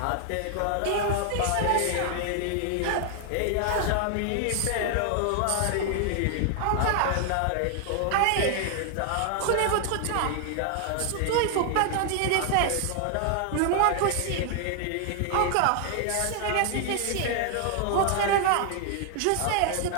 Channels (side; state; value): both; different; correlation 0.00